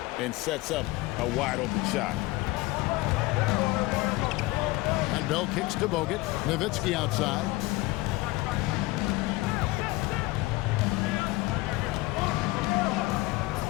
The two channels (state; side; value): quieter; right; 20.7 dB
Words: and sets up a wide open shot. And Bell kicks to Bogut. Nowitzki outside.